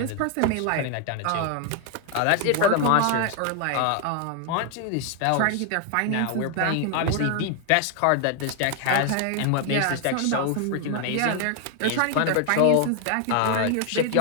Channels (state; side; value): different; both; correlation 0.00